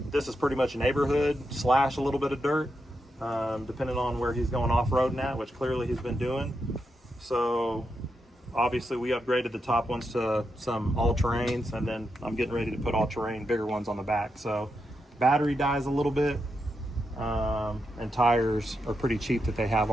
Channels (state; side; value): normal; both; correlation 0.85